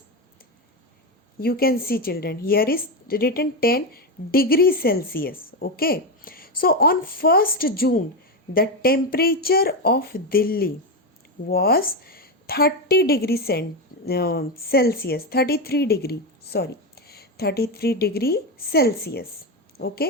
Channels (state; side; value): normal; both; correlation 0.12